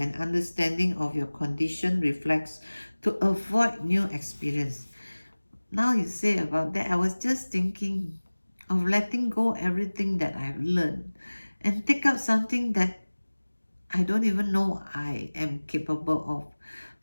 understanding of your condition reflex to avoid new experience. Now you say about that, I was just thinking of letting go everything that I've learned and take up something that I don't even know I am capable of.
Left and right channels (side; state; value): both; inverted; correlation -1.00